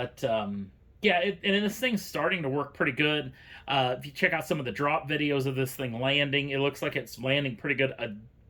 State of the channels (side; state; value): both; identical; correlation 1.00